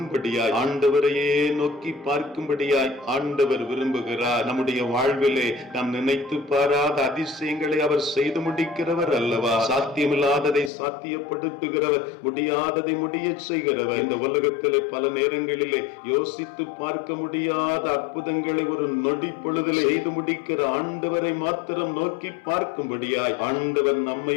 ஆண்டவரையே நோக்கி பார்க்கும்படியாய் ஆண்டவர் விரும்புகிறார். நம்முடைய வாழ்விலே நினைத்து பாராத அதிசயங்களை அவர் செய்து முடிக்கிறவர் அல்லவா. சாத்தியமில்லாததை சாத்தியப்படுத்துகிறவர், முடியாததை முடிய செய்கிறவர். இந்த உலகத்திலே பல நேரங்களிலே யோசித்து பார்க்க முடியாத அற்புதங்களை ஒரு நொடி பொழுதில் செய்து முடிக்கிற ஆண்டவரை மாத்திரம் நோக்கி பார்க்கும்படியாய் ஆண்டவர்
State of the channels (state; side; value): drops out; right; at 10.7 s